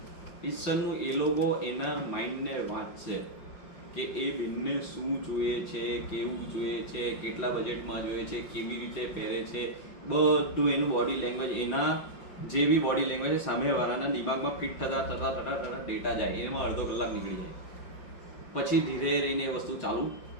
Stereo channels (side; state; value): right; late; 5.7 ms